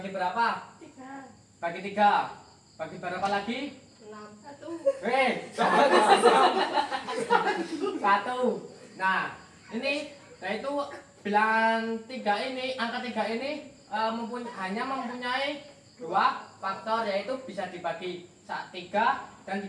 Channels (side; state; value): both; identical; correlation 1.00